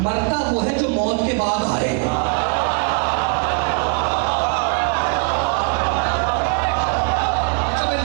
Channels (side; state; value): left; quieter; 35.2 dB